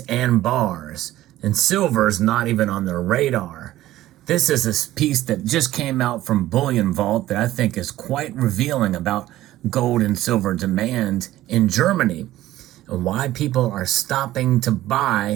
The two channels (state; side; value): quieter; left; 15.0 dB